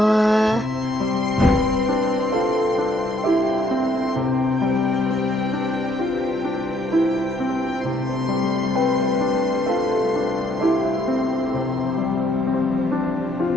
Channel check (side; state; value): both; normal; correlation 0.67